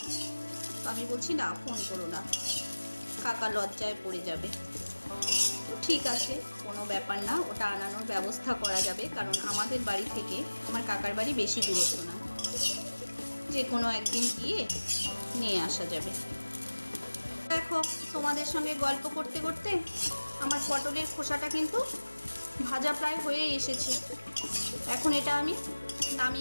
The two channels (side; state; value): both; inverted; correlation -1.00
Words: তো আমি বলছি না, ফোন করো না, কাকা লজ্জায় পড়ে যাবে। তো ঠিক আছে, কোনো ব্যাপার না, ওটা আনানোর ব্যবস্থা করা যাবে, কারণ আমাদের বাড়ি থেকে আমার কাকার বাড়ি বেশি দূরত্ব না, যে কোনো একদিন গিয়ে নিয়ে আসা যাবে। দেখো, তোমাদের সঙ্গে গল্প করতে করতে আমার পটলের খোসাটা কিন্তু ভাজা প্রায় হয়ে এসেছে। এখন এটা আমি